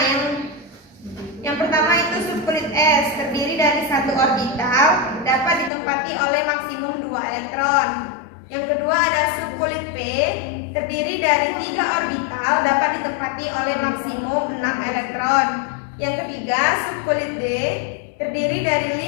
yang pertama itu subkulit S terdiri dari 1 orbital dapat ditempati oleh maksimum 2 elektron. Yang kedua ada subkulit P terdiri dari 3 orbital dapat ditempati oleh maksimum 6 elektron. Yang ketiga subkulit D terdiri dari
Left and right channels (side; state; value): right; drops out; at 5.7 s